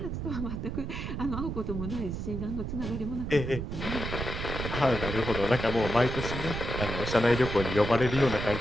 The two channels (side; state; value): right; noise; rumble, 4 dB below the sound